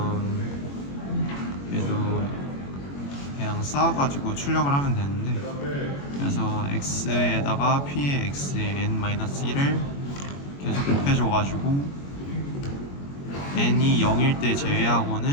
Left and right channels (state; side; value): late; right; 21 ms